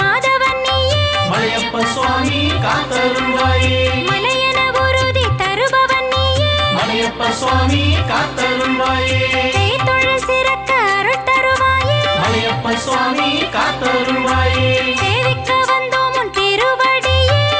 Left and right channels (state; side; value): identical; both; correlation 1.00